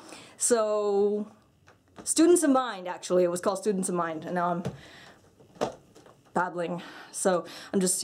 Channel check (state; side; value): identical; both; correlation 1.00